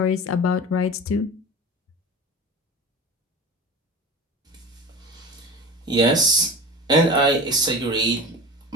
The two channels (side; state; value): both; normal; correlation 0.32